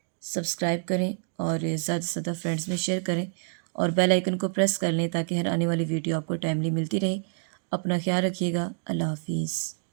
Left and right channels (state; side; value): silent; left; digital silence